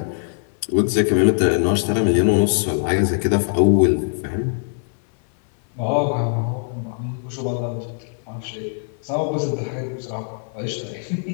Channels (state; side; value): silent; right; 59 dB below the other